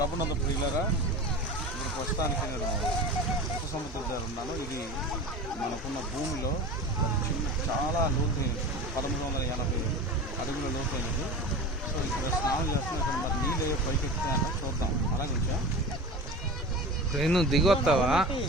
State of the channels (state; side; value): normal; both; correlation 0.32